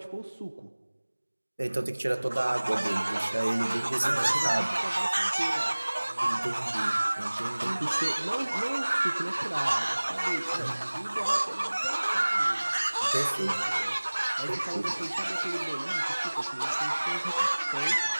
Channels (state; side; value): inverted; both; correlation -1.00